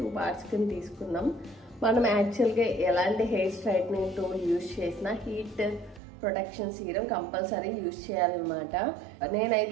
పార్ట్స్ కింద తీసుకున్నాం. మనం యాక్చువల్గా ఎలాంటి హెయిర్ స్ట్రైట్నింగ్ టూల్ యూజ్ చేసినా heat protection serum compulsory use చేయాలన్నమాట.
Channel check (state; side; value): drops out; left; at 6.0 s